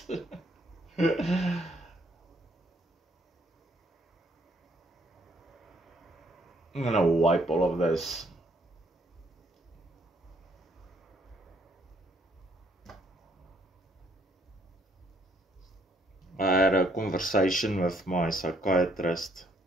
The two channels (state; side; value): normal; both; correlation 0.67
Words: I'm gonna wipe all of this. I had a conversation with my psychiatrist